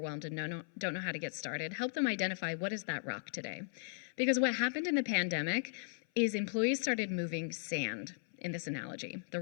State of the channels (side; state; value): right; silent; 53 dB below the other